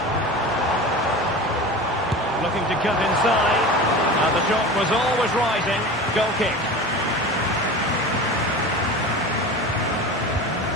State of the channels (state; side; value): normal; both; correlation 0.32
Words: Looking to cut inside. And the shot was always rising. Goal kick.